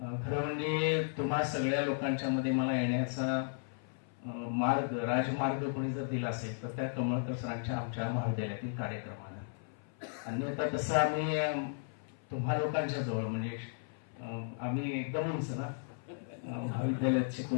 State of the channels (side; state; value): right; silent; 54 dB below the other